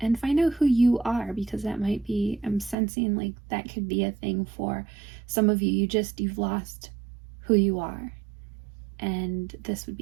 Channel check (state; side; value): drops out; left; at 2.8 s